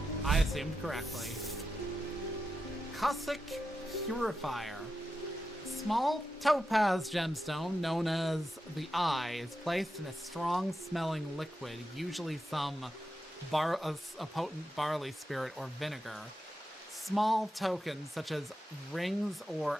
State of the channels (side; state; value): both; normal; correlation 0.89